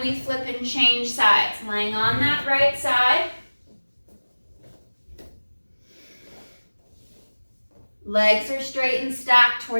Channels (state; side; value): inverted; both; correlation -1.00